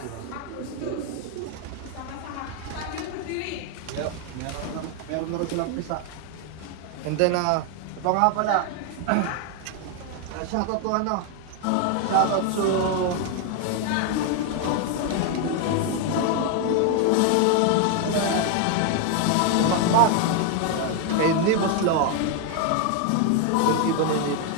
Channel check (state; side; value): different; both; correlation 0.01